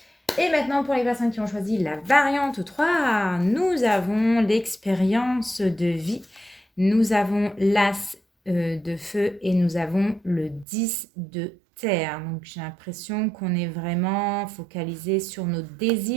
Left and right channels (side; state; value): left; drops out; at 10.7 s